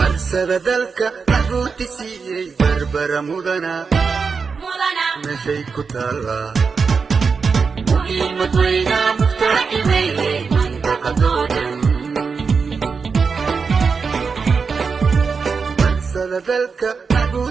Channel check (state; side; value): quieter; left; 5.2 dB